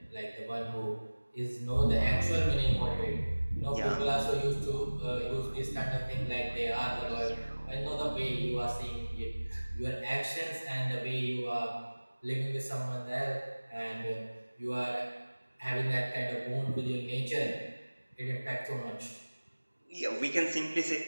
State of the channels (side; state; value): both; inverted; correlation -1.00